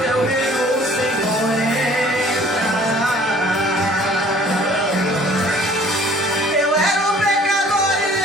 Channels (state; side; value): normal; both; correlation 0.53